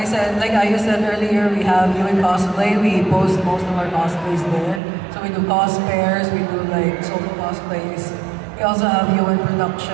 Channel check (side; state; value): left; drops out; at 4.8 s